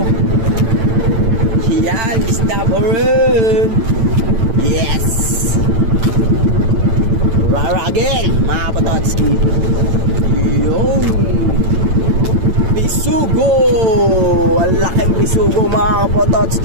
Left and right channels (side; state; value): left; late; 8.9 ms